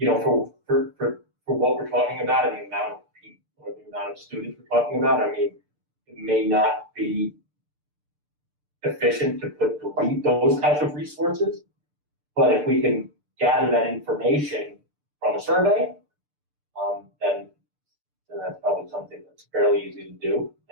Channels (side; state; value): left; late; 6.7 ms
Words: what we're talking about and the amount of people or the amount of students we're talking about, I mean, it may not be efficient to delete those types of resources. But if we can gather that information from a survey, then that's probably something that's fairly easy to do